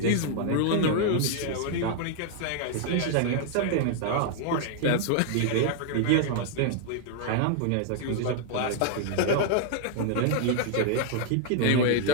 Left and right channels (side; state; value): both; different; correlation -0.01